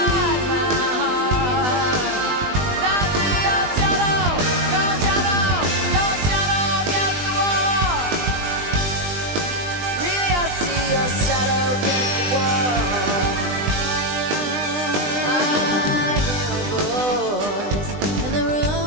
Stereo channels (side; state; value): left; late; 20 ms